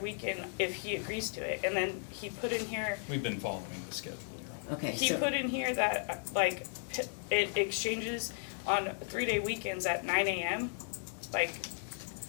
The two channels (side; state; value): right; silent; digital silence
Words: if he agrees to it. And then he put in here, We've been following the schedule, Your Honor. Okay, he so, put in here that, it exchanges on 3-day weekends at 9 a.m. Like,